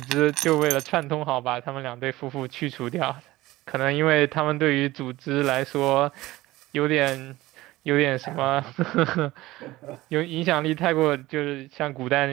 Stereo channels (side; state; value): left; quieter; 18.1 dB